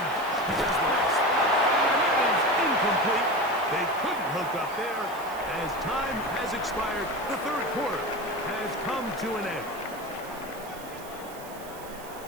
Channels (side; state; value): right; noise; hiss, 18 dB below the sound